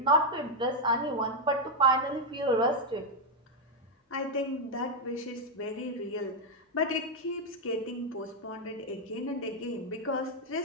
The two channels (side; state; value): both; normal; correlation 0.02